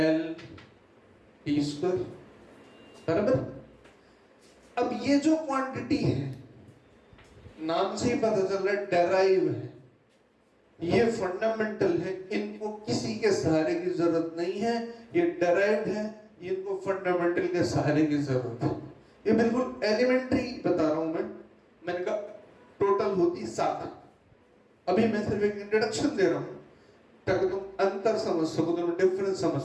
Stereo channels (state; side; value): identical; both; correlation 1.00